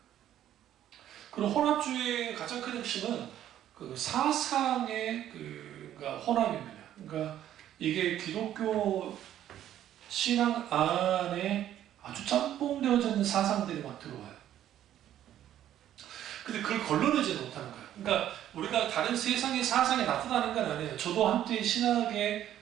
그리고 혼합주의의 가장 큰 핵심은 그 사상의 그러니까 혼합입니다. 그러니까 이게 기독교 신앙 안에 아주 짬뽕되어져 있는 사상들이 막 들어와요. 근데 그걸 걸러내지 못하는 거예요. 그러니까 우리가 다른 세상의 사상이 나타나는 건 아니에요. 저도 한때 신학에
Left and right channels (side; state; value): left; quieter; 11.6 dB